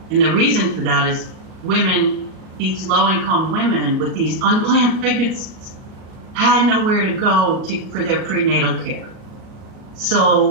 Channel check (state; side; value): late; left; 38 ms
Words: And the reason for that is these low-income women with these unplanned pregnancies had nowhere to go for their prenatal care.